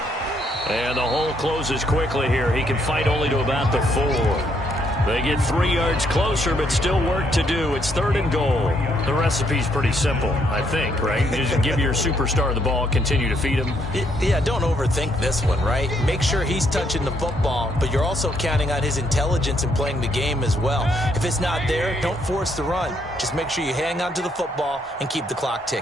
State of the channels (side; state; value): both; normal; correlation 0.72